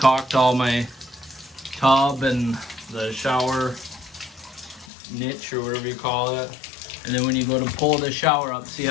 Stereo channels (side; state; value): right; drops out; at 4.9 s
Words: all my tub and the shower niche or whatever you call it. And then when you go to pull the shower up, see